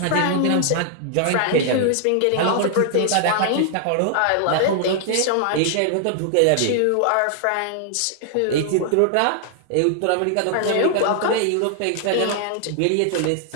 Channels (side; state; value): both; different; correlation 0.00